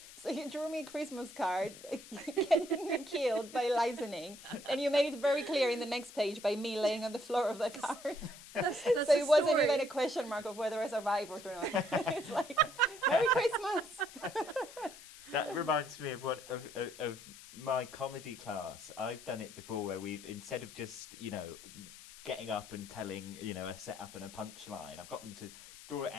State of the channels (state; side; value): noise; left; hiss, 17 dB below the sound